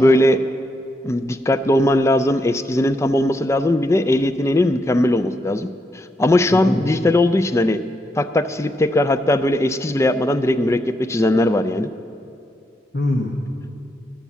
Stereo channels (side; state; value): both; normal; correlation 0.80